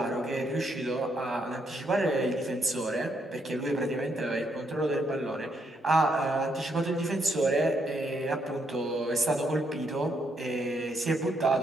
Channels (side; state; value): both; normal; correlation 0.75